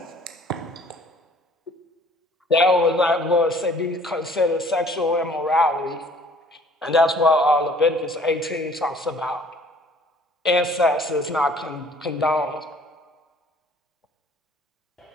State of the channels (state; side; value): normal; both; correlation 0.54